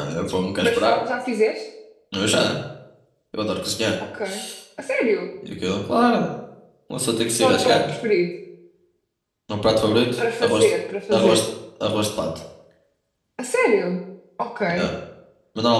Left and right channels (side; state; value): both; identical; correlation 1.00